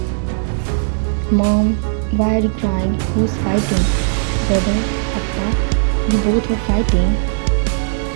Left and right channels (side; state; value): left; silent; digital silence